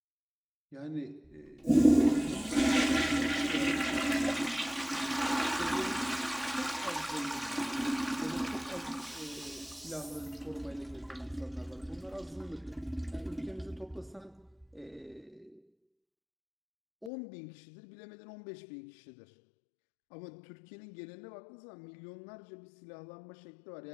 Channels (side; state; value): right; drops out; at 17.1 s